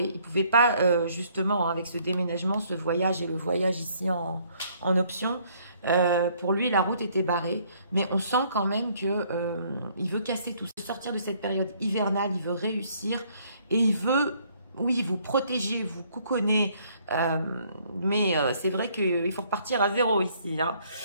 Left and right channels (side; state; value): both; inverted; correlation -0.64